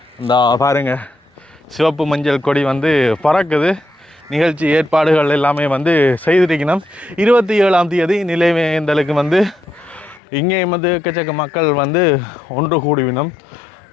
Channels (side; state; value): right; drops out; at 10.2 s